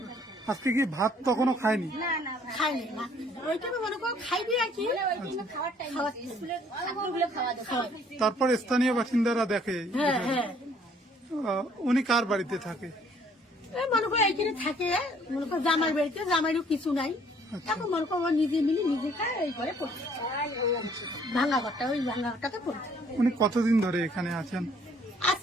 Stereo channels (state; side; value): normal; both; correlation 0.60